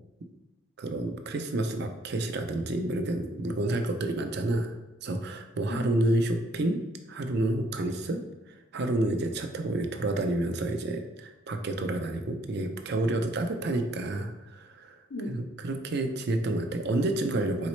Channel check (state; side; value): normal; both; correlation 0.65